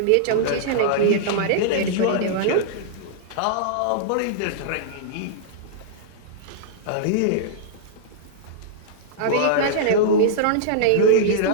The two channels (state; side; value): different; both; correlation -0.02